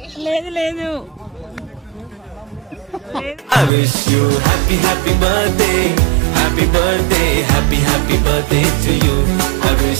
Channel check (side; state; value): left; drops out; at 3.7 s